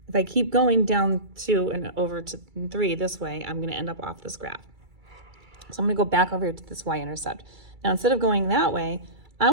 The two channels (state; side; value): late; left; 2.3 ms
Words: if I keep going down 2 and over to 3 this way, I'm going to end up off this graph. So I'm going to go back over here to this y-intercept. Now, instead of going that way, I